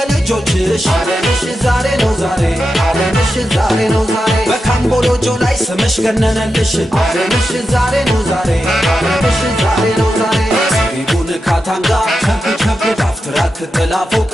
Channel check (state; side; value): normal; both; correlation 0.89